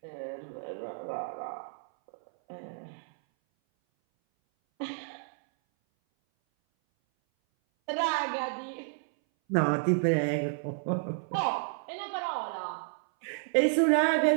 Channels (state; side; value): silent; left; 57 dB below the other